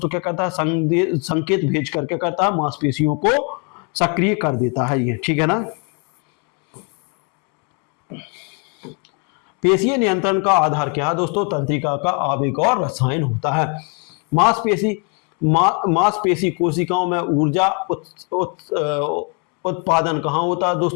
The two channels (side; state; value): right; quieter; 35.1 dB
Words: क्या करता है, संकेत भेज कर क्या करता है, मांसपेशियों को सक्रिय कर देता है ये, ठीक है ना। पेशीय नियंत्रण का आधार क्या है दोस्तों, तंत्रिका का आवेग और रसायन होता है। मांसपेशी कोशिकाओं में ऊर्जा उत्पादन कहाँ होता है